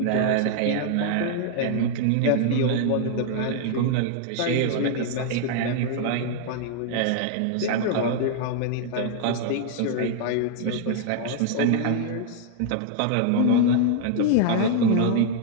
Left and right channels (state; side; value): different; both; correlation -0.01